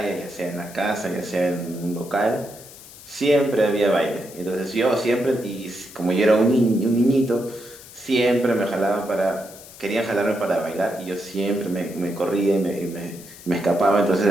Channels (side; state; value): left; noise; hiss, 18 dB below the sound